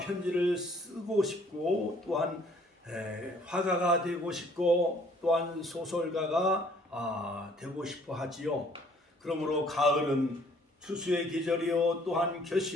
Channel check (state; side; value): normal; both; correlation 0.60